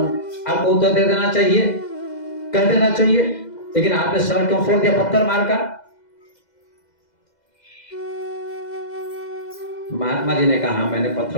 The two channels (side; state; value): right; late; 2.0 ms